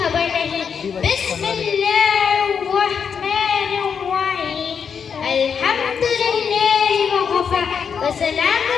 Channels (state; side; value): quieter; right; 6.7 dB